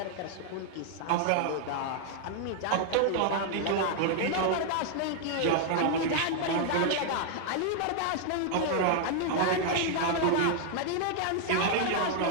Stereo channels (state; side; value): different; both; correlation 0.00